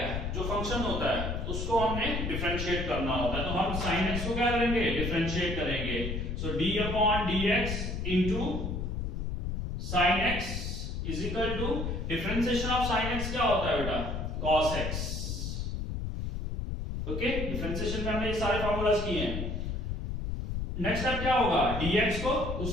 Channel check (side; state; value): left; noise; rumble, 3 dB below the sound